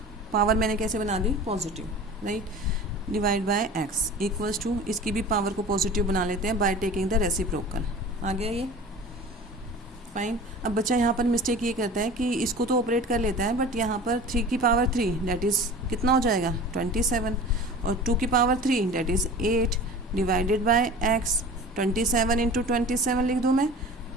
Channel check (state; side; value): normal; both; correlation 0.39